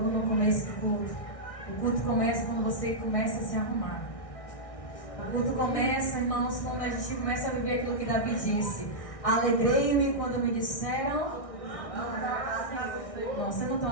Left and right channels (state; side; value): late; right; 1.6 ms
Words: no começo do culto. O culto começa quando você começa a se arrumar. O culto começa, irmãos, quando a gente começa a viver aquilo que Davi disse. Alegrei-me quando me disseram... Não, vocês não estão